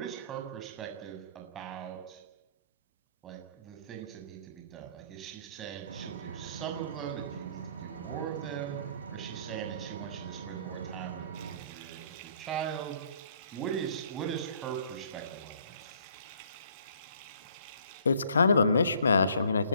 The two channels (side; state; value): both; inverted; correlation -0.61